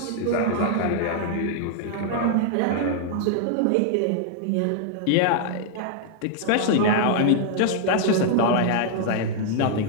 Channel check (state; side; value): different; both; correlation -0.01